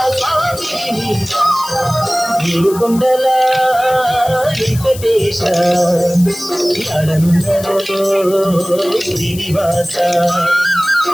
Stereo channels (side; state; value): left; noise; hiss, 14 dB below the sound